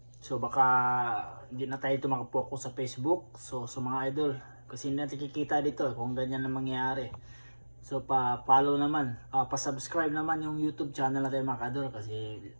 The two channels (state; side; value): inverted; both; correlation -1.00